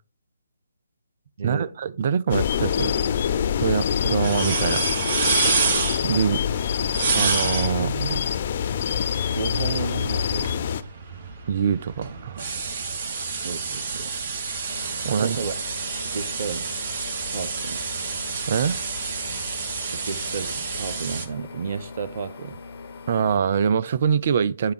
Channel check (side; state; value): both; inverted; correlation -0.66